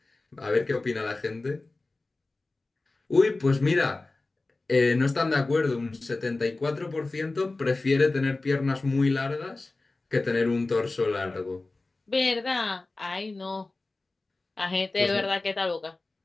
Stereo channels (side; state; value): right; quieter; 3.3 dB